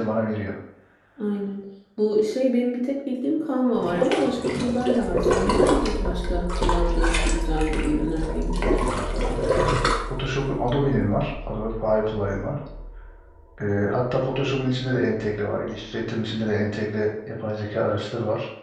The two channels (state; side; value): identical; both; correlation 1.00